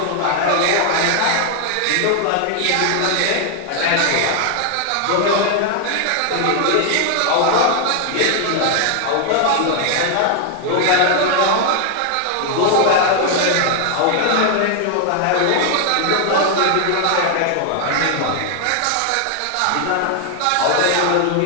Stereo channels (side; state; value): both; different; correlation 0.00